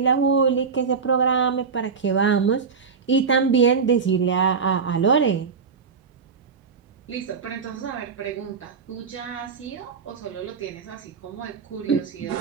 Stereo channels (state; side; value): quieter; left; 5.6 dB